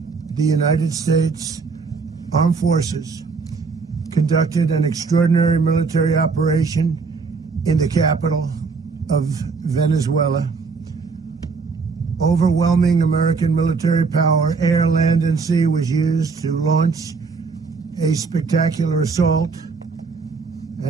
the United States Armed Forces conducted an extraordinary military operation in the capital of Venezuela. Overwhelming American military power, air, land, and sea, was used to launch a spectacular assault.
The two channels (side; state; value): left; quieter; 4.7 dB